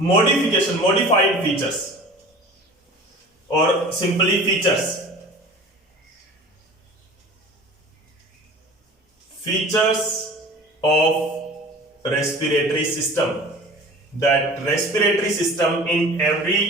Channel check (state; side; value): normal; both; correlation 0.40